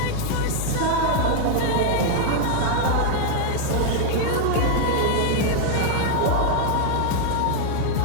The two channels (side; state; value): both; different; correlation 0.00